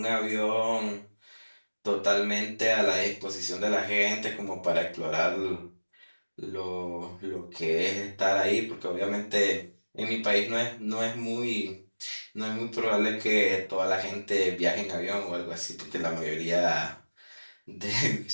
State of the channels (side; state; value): both; inverted; correlation -1.00